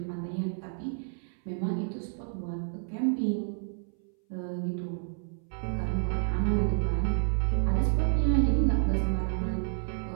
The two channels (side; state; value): left; silent; 58 dB below the other